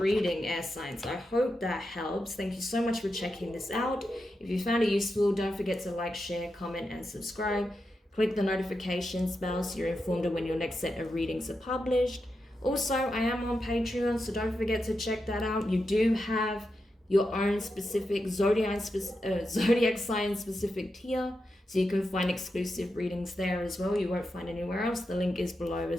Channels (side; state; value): both; normal; correlation 0.88